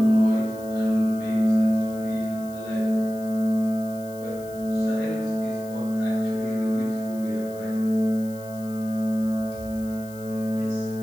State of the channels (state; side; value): noise; left; hiss, 21 dB below the sound